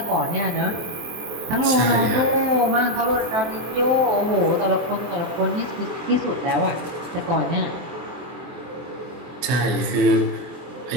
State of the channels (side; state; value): left; late; 24 ms